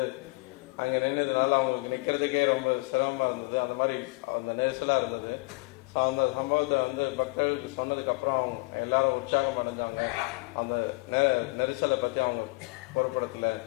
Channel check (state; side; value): quieter; right; 27.3 dB